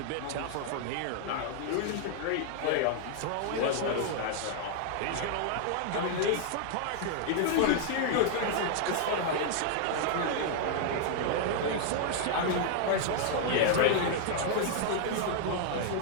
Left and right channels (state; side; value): different; both; correlation -0.01